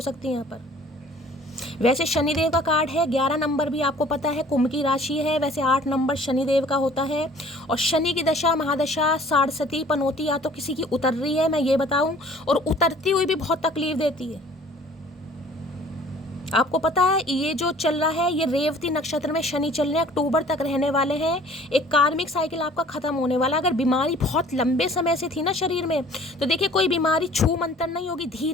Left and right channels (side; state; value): both; normal; correlation 0.52